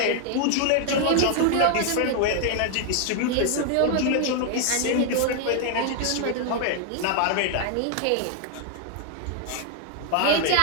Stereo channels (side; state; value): both; different; correlation 0.00